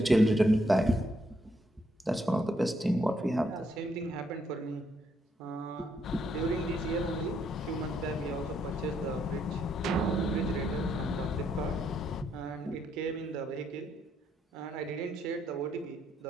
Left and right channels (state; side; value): normal; both; correlation 0.74